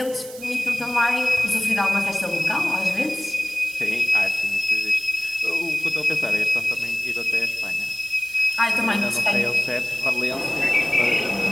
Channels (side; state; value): right; noise; hiss, 16 dB below the sound